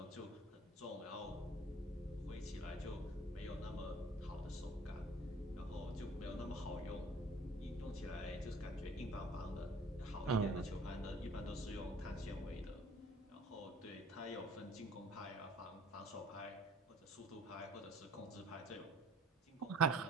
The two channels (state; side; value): normal; both; correlation 0.52